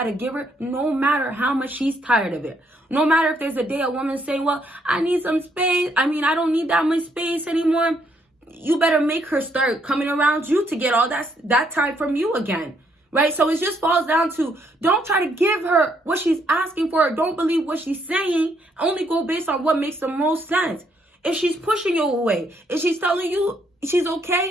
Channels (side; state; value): both; normal; correlation 0.72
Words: to give her no matter how much she's tired of it. No matter if there's a day a woman saying, well, I need some space. I don't need that much space anymore. You better make her start coming around you to get all that time from you again. Right? So it just falls down to, don't try to give her what she's asking for. Don't believe what she's saying. Only go based on what makes the most sense. If she's pushing you away, if she's telling you she's